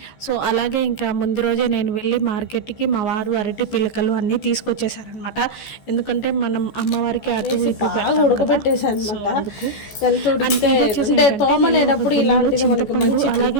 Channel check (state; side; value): late; right; 14 ms